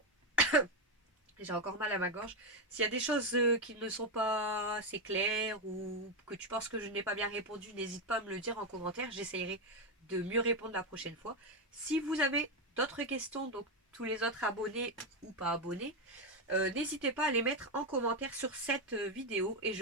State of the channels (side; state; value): both; normal; correlation 0.07